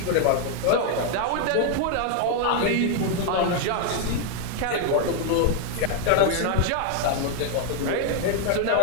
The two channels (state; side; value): different; both; correlation 0.00